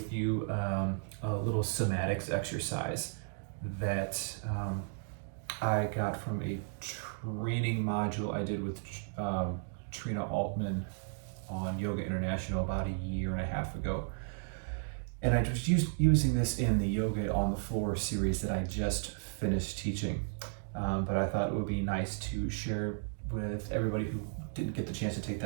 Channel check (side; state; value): left; silent; digital silence